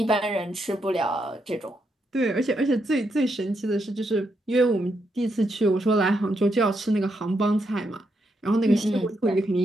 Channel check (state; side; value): normal; both; correlation 0.80